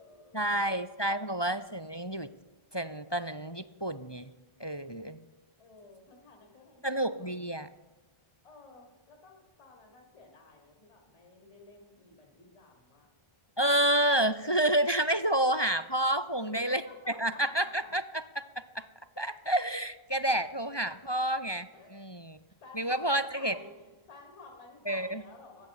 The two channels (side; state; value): right; late; 1.2 ms